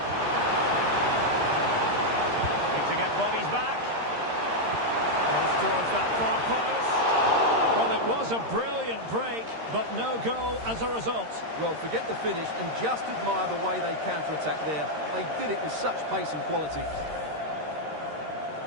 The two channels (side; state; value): left; late; 13 ms